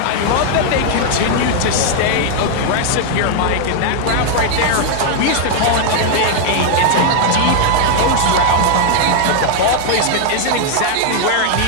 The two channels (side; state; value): both; different; correlation 0.00